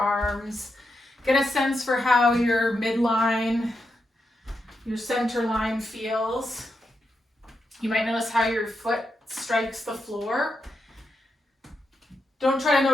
Get a sense for how your midline, your center line feels. You might notice how your foot strikes the floor. Don't try to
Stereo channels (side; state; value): both; normal; correlation 0.85